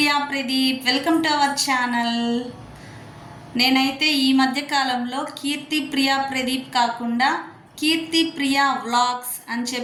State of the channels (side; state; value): both; identical; correlation 1.00